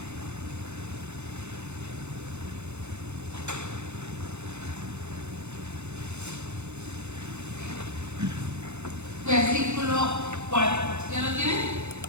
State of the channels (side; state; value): left; late; 0.81 ms